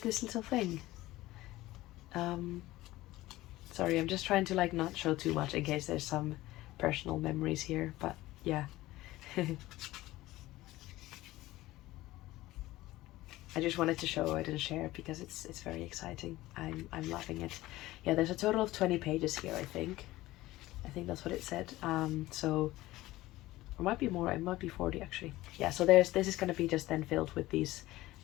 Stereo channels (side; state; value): right; quieter; 17.4 dB